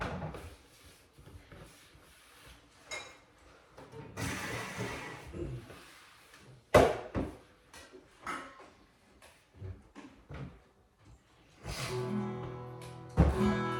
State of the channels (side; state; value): both; identical; correlation 1.00